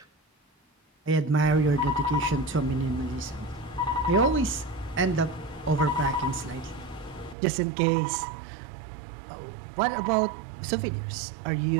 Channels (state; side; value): drops out; left; at 7.4 s